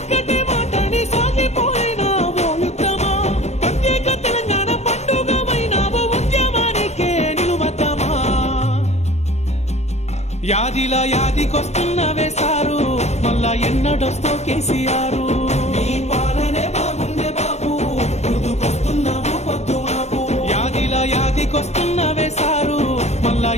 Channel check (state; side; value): late; right; 0.32 ms